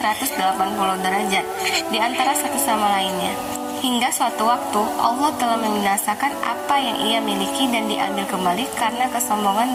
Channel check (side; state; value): both; identical; correlation 1.00